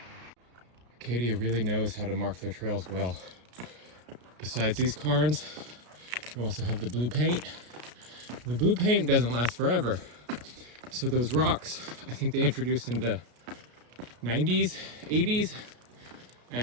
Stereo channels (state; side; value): late; left; 33 ms